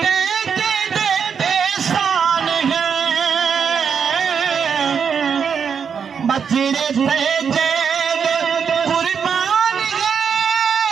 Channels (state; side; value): quieter; left; 6.8 dB